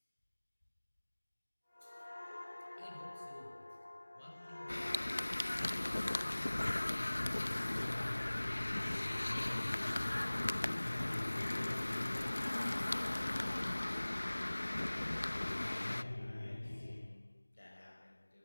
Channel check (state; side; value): inverted; both; correlation -1.00